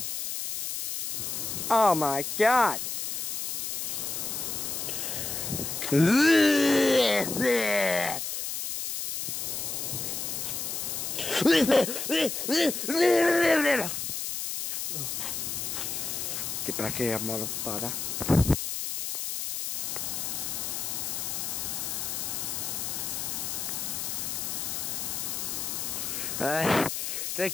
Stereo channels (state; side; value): noise; left; hiss, 3 dB below the sound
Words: Oh my god. Get back here, motherfucker.